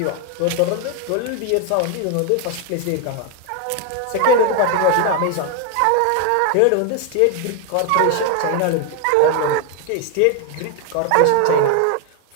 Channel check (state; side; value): different; both; correlation 0.00